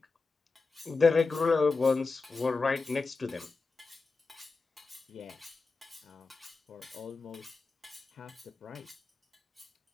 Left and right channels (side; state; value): right; quieter; 4.0 dB